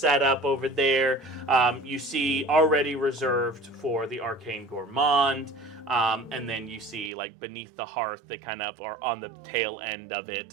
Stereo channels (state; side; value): drops out; left; at 7.1 s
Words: up over there. You see already reserved for the Arcane Gourmand. And then you see like beneath the hearth, they kind of are on the tail end of